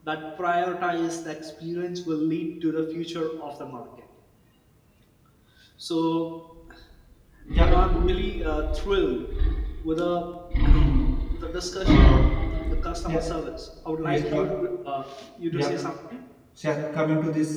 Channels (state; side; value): identical; both; correlation 1.00